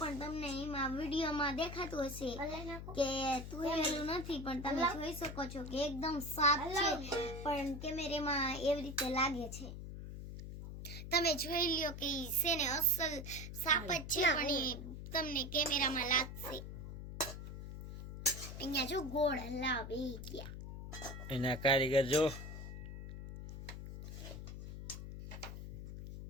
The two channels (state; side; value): noise; left; hum, 9 dB below the sound